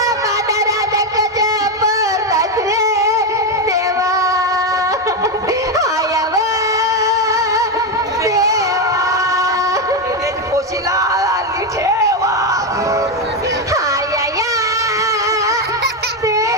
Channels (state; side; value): normal; both; correlation 0.08